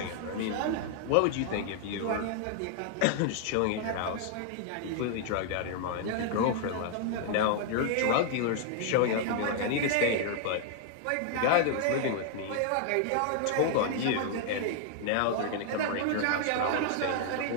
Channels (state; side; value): different; both; correlation 0.00